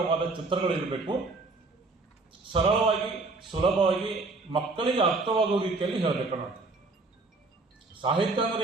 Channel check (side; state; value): left; quieter; 3.5 dB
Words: ಚಿತ್ರಗಳಿರಬೇಕು. ಸರಳವಾಗಿ ಸುಲಭವಾಗಿ ಮಕ್ಕಳಿಗೆ ಅರ್ಥವಾಗುವ ರೀತಿಯಲ್ಲಿ ಹೇಳಬೇಕು ನೋಡಿ. ಸಾಹಿತ್ಯ ಅಂದ್ರೆ